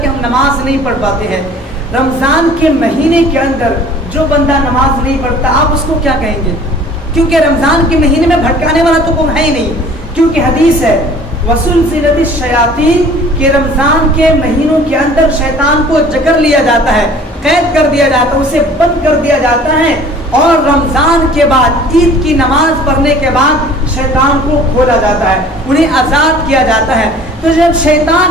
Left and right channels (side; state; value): both; normal; correlation 0.49